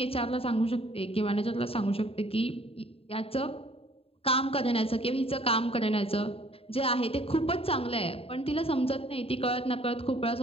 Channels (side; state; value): right; late; 0.27 ms